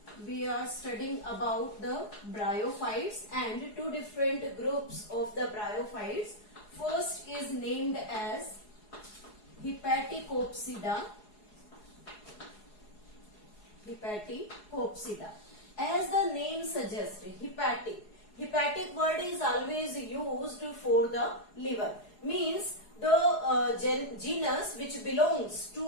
we are studying about the bryophytes and two different groups of the bryophytes. First is named as Hepaticopsida. Hepaticopsida. As the name suggests, hepatic word is always used for the liver. Means the genus which belongs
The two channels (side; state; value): right; late; 4.8 ms